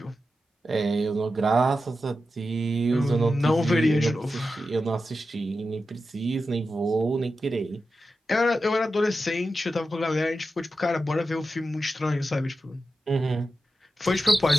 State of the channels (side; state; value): both; normal; correlation 0.91